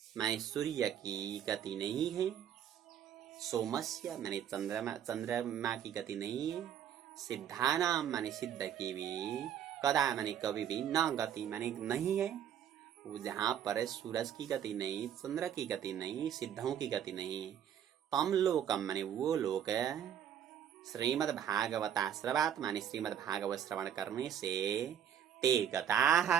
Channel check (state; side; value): quieter; left; 9.6 dB